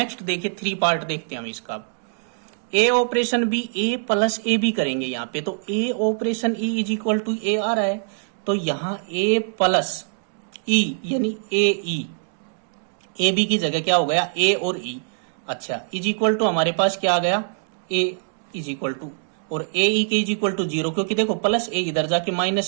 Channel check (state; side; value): silent; left; digital silence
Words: देखिए 3 पार्ट देखते हैं हम इसका। A operation B A plus A B करेंगे यहाँ पे, तो A operation E is equal to A आ रहा है, तो यहाँ ए प्लस ई यानी ए बी की जगह क्या हो गया, ए और ई। अच्छा, इज इक्वल टू हमारे पास क्या आ गया, ए इज इक्वल टू, और ए ई के इज इक्वल टू 0, क्योंकि देखो प्लस ए इधर जाके